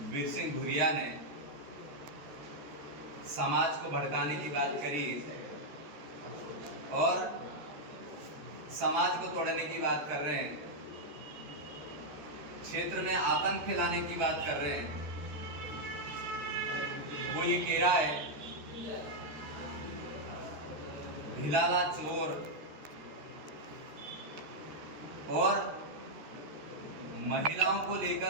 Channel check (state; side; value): late; left; 14 ms